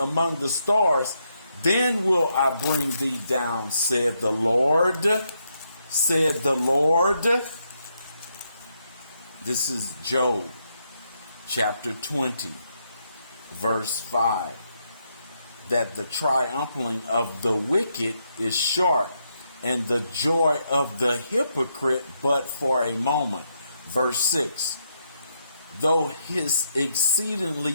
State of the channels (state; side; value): inverted; both; correlation -0.79